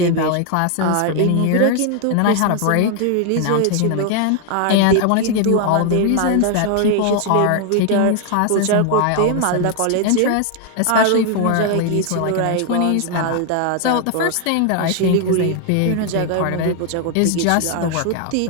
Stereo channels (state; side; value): different; both; correlation 0.00